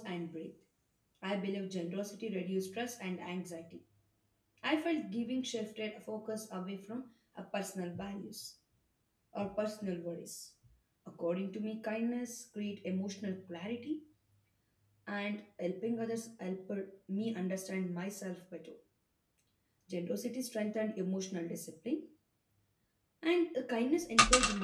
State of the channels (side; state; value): both; identical; correlation 1.00